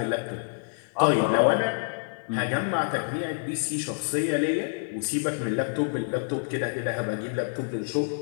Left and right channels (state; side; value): silent; right; digital silence